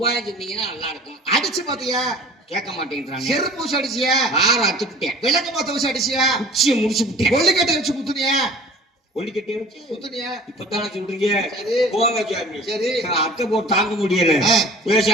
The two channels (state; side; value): normal; both; correlation 0.46